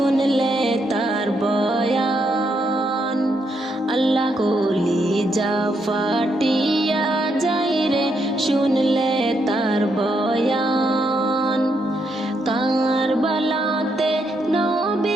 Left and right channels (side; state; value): both; normal; correlation 0.78